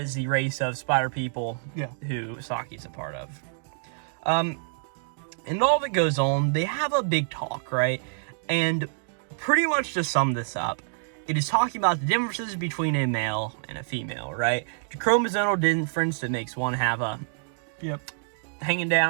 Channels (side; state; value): left; silent; digital silence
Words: the race of spider people who Saki's a part of. And all that goes on, they have a big talk, right? And pretty much to sum this up, it is talking about the differences between a male and a female, right? The chromosomal difference that makes one have a hanging